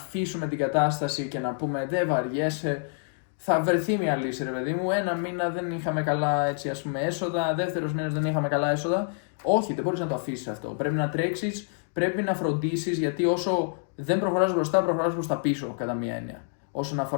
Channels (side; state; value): right; silent; 60 dB below the other